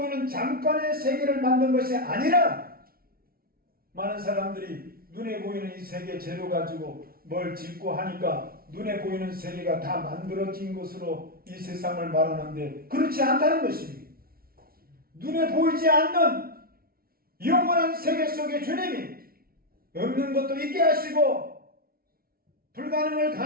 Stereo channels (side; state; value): left; late; 0.43 ms